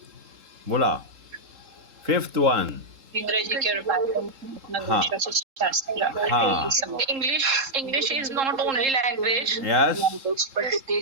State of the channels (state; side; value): late; left; 3.7 ms